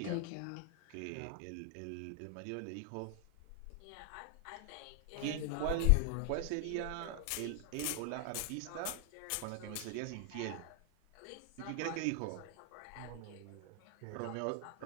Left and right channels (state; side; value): different; both; correlation 0.00